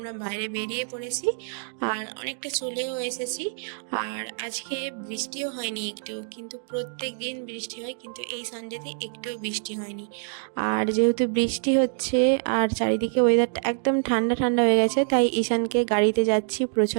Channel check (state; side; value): silent; left; digital silence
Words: বাইরে বেরিয়ে পড়েছি আর অনেকটা চলেও এসেছি। আর আজকে বৃষ্টিও হয়নি একটু, কিন্তু প্রত্যেক দিন বৃষ্টি হয়, কিন্তু এই সানডেতে একটুও বৃষ্টি হয়নি। আর যেহেতু বৃষ্টি হচ্ছে আর চারিদিকে ওয়েদারটা একদম ঠান্ডা ঠান্ডা হয়ে গেছে, তাই ঈশানকে গাড়িতে যাচ্ছি,